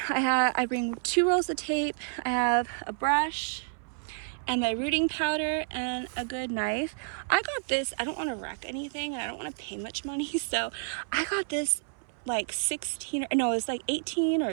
I bring 2 rolls of tape. I have a brush and my rooting powder and a good knife. I got this, I don't want to wreck anything and I don't want to pay much money, so I got this like 18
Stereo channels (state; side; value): silent; left; 58 dB below the other